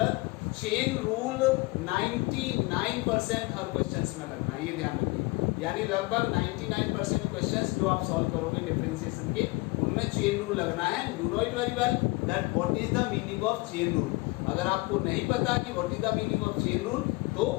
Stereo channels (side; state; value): right; quieter; 23.9 dB